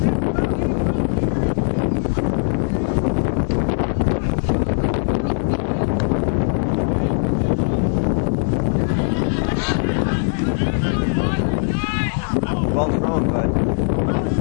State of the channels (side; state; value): right; silent; digital silence